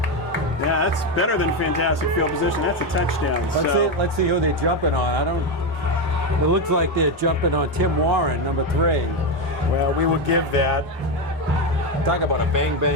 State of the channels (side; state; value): both; normal; correlation 0.10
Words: Yeah, that's better than fantastic field position. That's a touchdown. Let's see who they're jumping on. It looks like they're jumping on Tim Warren, number 3. Well, we will give that. Talk about a